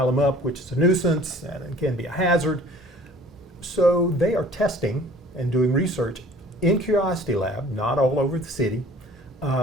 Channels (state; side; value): normal; both; correlation 0.51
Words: them up, which is a nuisance and it can be a hazard. So they are testing and doing research in Curiosity Lab, not all over the city,